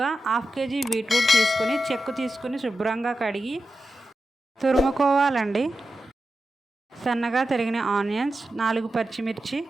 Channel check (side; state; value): both; normal; correlation 0.91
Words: హాఫ్ కేజీ బీట్రూట్ తీసుకొని చెక్కు తీసుకుని శుభ్రంగా కడిగి తురుముకోవాలండి. సన్నగా తరిగిన ఆనియన్స్, 4 పచ్చిమిర్చి,